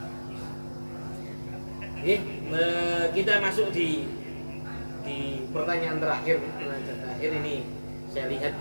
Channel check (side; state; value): both; inverted; correlation -1.00